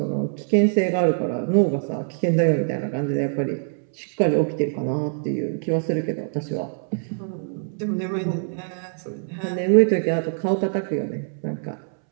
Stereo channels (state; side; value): silent; left; 63 dB below the other